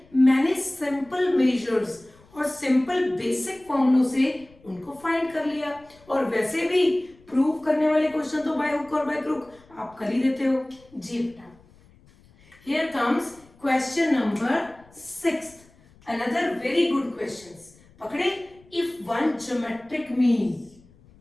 मैंने सिंपल मेजर्स और सिंपल बेसिक फॉर्मूलों से उनको फाइंड कर लिया, और वैसे भी प्रूव करने वाले क्वेश्चन तो बाय हुक और बाय क्रुक आप कर ही देते हो। जी बेटा, here comes question number 6th, another very good questions। पकड़े, if one geometric mean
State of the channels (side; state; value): left; noise; rumble, 28 dB below the sound